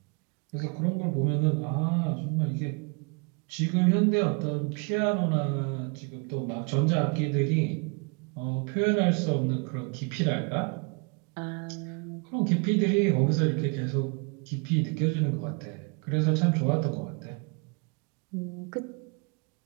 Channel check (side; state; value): left; quieter; 33.7 dB